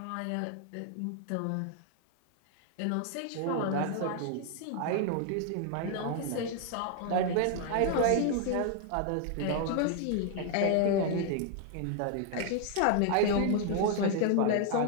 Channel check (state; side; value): different; both; correlation 0.00